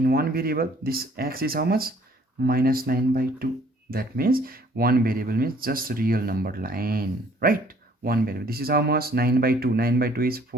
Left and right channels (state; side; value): normal; both; correlation 0.59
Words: this x is how much? Minus 9 by 2. That means one variable means just real number line, right? One variable. This is how much? 9 by 2. 9 by 2 is